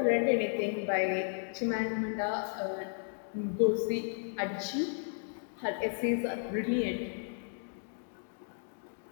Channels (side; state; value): right; silent; 55 dB below the other